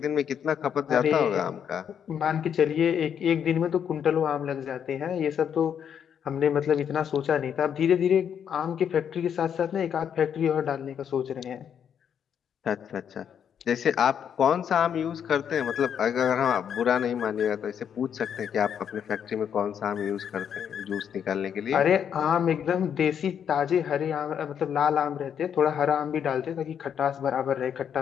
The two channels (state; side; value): quieter; right; 8.3 dB